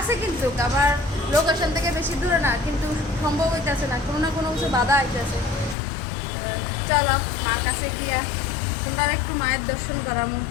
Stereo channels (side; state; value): right; drops out; at 5.8 s